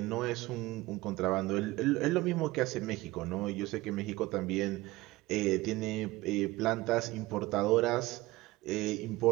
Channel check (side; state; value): left; quieter; 19.5 dB